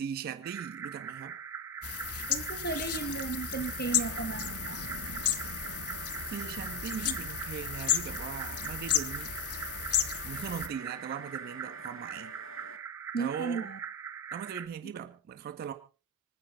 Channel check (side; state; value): both; normal; correlation 0.13